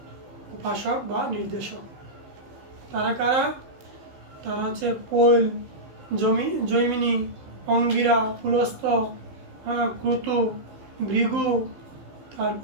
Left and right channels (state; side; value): late; left; 16 ms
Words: উপাসক বা নির্দেশক। তারা কারা? তারা হচ্ছে পৈল, জৈমিনী, অঙ্গিরা, পুলস্ত, ক্রতু, ভৃগু,